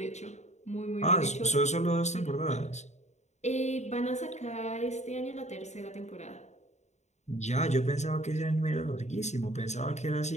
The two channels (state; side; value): late; right; 0.33 ms